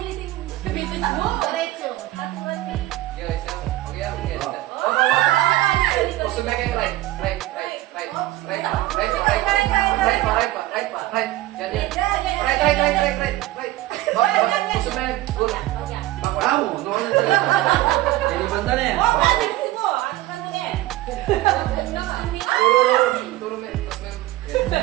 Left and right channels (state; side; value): quieter; left; 16.7 dB